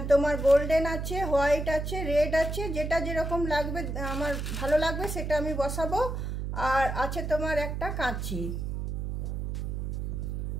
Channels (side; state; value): right; noise; hum, 3 dB below the sound